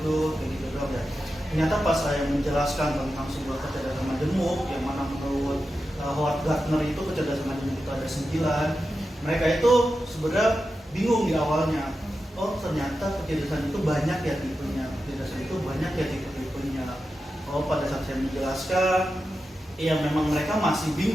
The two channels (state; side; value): normal; both; correlation 0.91